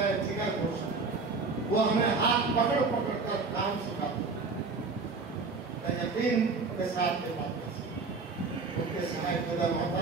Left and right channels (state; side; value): quieter; left; 4.2 dB